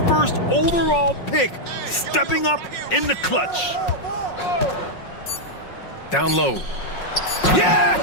first overall pick stepping up in the clutch. Down low. Yeah!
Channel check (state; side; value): late; right; 5.5 ms